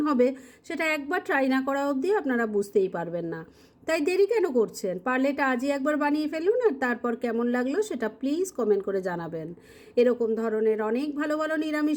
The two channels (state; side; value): identical; both; correlation 1.00